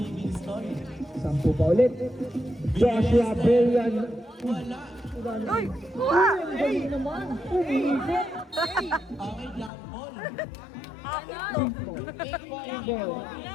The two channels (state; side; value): drops out; right; at 9.7 s